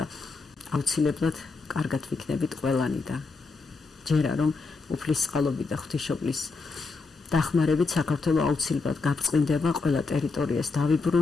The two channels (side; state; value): right; quieter; 4.2 dB